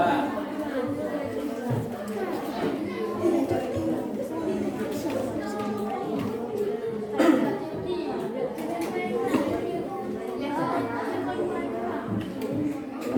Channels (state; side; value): identical; both; correlation 1.00